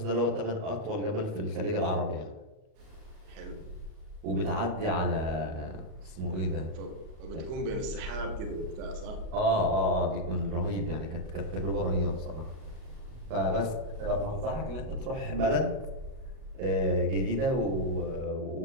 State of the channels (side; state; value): left; late; 38 ms